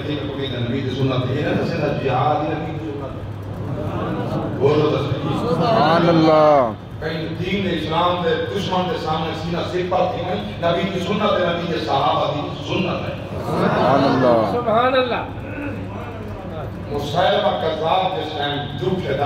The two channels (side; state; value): both; identical; correlation 1.00